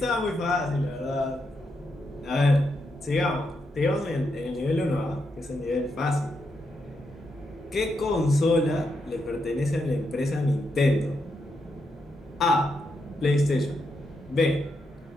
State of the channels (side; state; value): both; normal; correlation 0.82